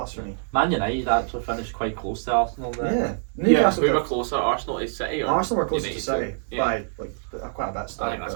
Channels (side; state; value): left; silent; digital silence